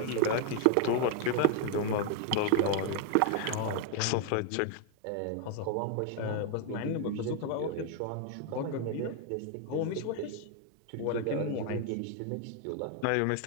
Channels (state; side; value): different; both; correlation 0.00